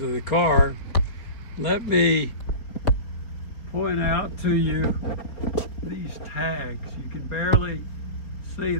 the car, let me point out to you these tags. You can barely see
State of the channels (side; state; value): right; late; 4.6 ms